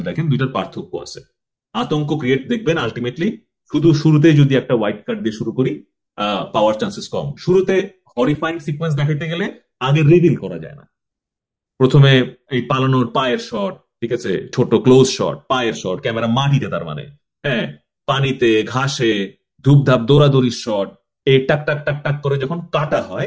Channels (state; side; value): identical; both; correlation 1.00